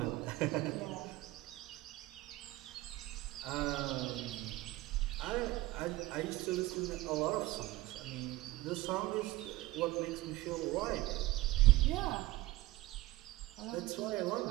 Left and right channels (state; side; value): quieter; left; 19.0 dB